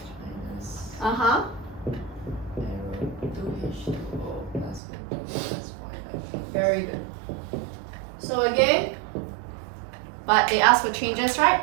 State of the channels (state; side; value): drops out; left; at 4.8 s